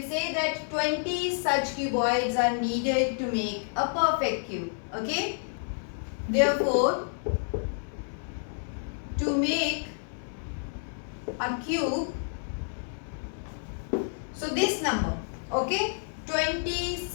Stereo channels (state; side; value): silent; right; 58 dB below the other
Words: say that 20 such cuboids are needed to make a perfect cube. Okay. Therefore, to make a cube, so this number, okay, 20